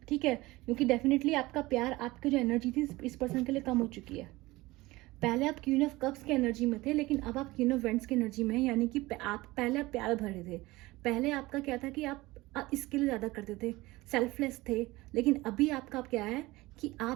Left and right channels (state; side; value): quieter; left; 20.1 dB